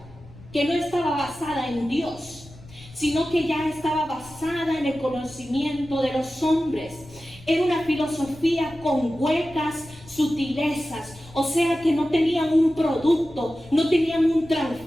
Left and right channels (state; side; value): noise; left; rumble, 21 dB below the sound